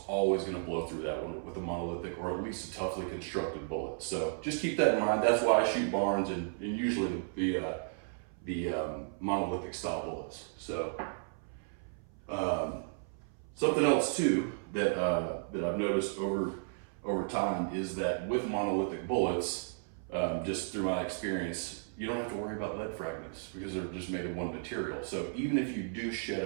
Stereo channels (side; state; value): left; silent; 55 dB below the other